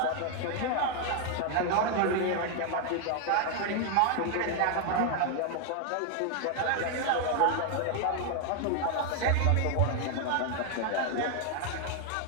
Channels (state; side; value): different; both; correlation 0.00